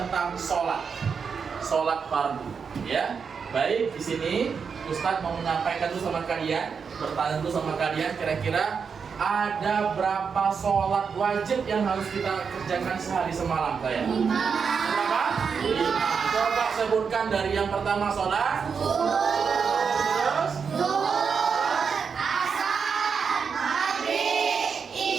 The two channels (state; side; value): quieter; left; 6.0 dB